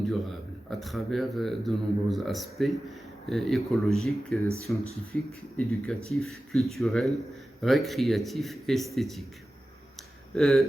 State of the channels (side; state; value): both; normal; correlation 0.95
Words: à travers de nombreux aspects écologiques, scientifiques, éducatifs, culturels, récréatifs et esthétiques.